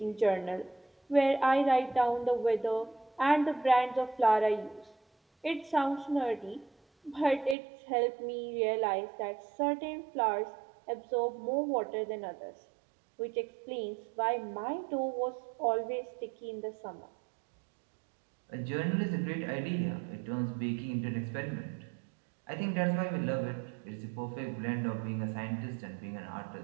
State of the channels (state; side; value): drops out; left; at 7.6 s